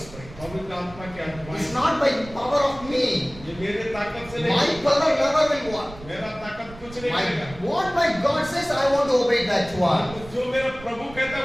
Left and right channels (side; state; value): right; noise; rumble, 17 dB below the sound